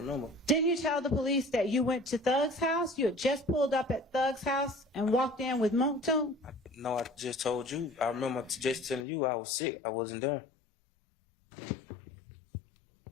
Didn't you tell the police that you went to Thug's house? You had just pulled up at Thug's house and walked in with Moontoon? No, I just told you. I remember just telling you I was sick. I wasn't there.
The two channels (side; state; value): right; drops out; at 9.1 s